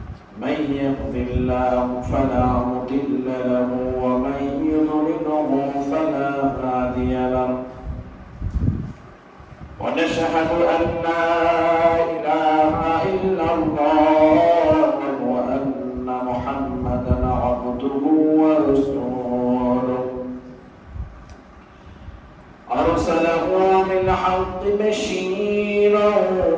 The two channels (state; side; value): identical; both; correlation 1.00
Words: من يهد الله فلا مضل له ومن يضلله فلا هادي له ونشهد أن لا إله إلا الله وأن محمدا عبده ورسوله أرسله بالحق بشيرا